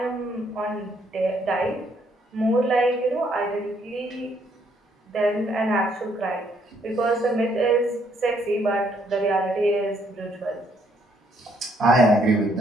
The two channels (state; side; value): normal; both; correlation 0.69